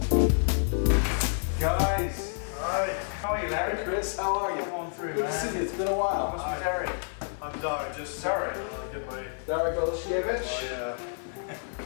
Guys! Hi. How are you, Larry? Chris, how are you? Come on through, Good man. to see you. It's been a while. What's with Derek? I'm Derek. Just Derek. Get my. Derek Oleszkiewicz. Oh yeah.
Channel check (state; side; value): silent; right; digital silence